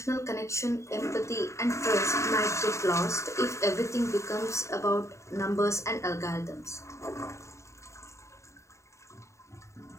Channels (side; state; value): right; late; 0.14 ms